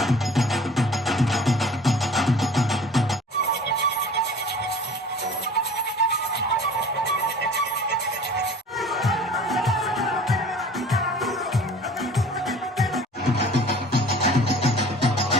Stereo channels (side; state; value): both; normal; correlation 0.46